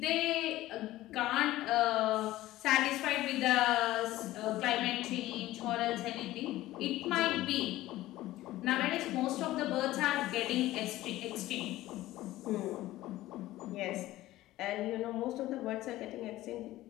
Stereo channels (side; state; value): right; quieter; 16.1 dB